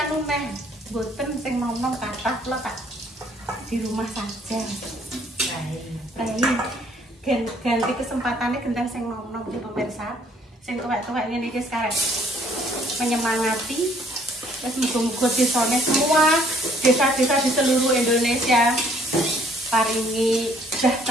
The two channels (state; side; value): normal; both; correlation 0.63